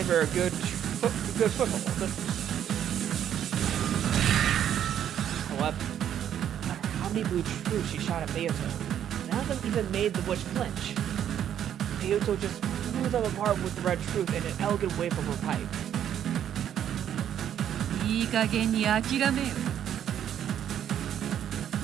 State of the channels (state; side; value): quieter; left; 9.9 dB